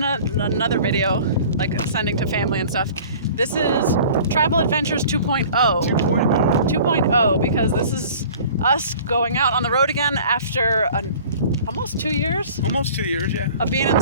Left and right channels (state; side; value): inverted; both; correlation -0.46